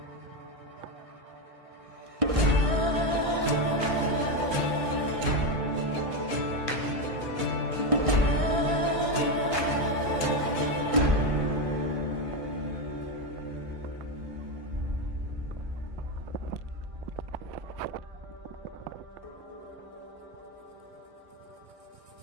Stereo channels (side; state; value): left; late; 1.6 ms